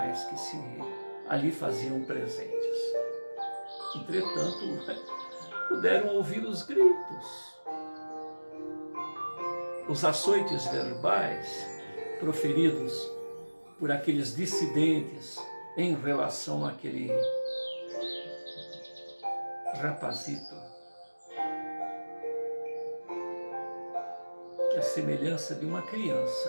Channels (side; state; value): both; inverted; correlation -1.00